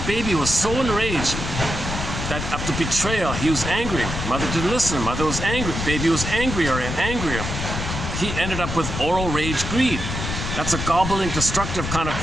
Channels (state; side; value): noise; left; rumble, 4 dB below the sound